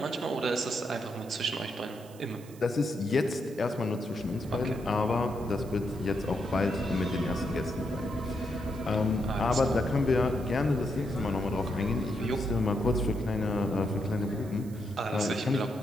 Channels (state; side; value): noise; right; hiss, 22 dB below the sound